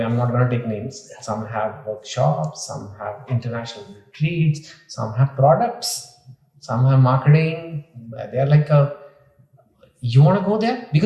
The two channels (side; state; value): both; identical; correlation 1.00